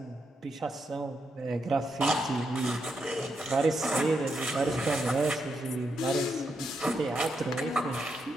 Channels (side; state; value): both; normal; correlation 0.82